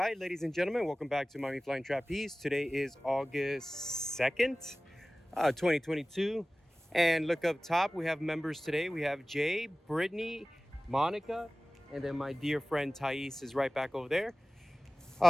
ladies and gentlemen, welcome back to Mommy Flying Trapeze. Today is August 2nd, 2022. And look up top, we have members today. We have Jay, Brittany, Monica, and then my dear friend Thais is right back over there.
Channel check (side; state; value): both; normal; correlation 0.97